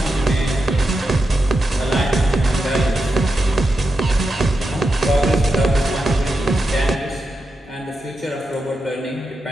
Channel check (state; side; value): normal; both; correlation 0.88